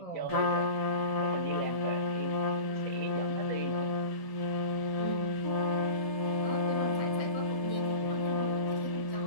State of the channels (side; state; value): right; late; 1.0 ms